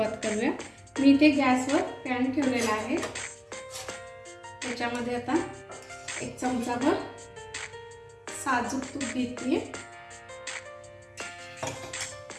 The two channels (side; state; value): both; identical; correlation 1.00